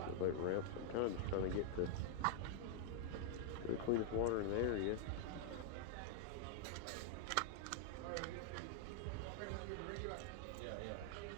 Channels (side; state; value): both; different; correlation -0.01